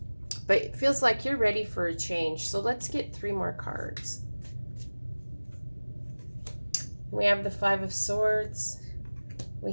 but it feels like you're ready for a change. So let's get 3 more cards. We have the 5 of Swords,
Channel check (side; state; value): both; inverted; correlation -1.00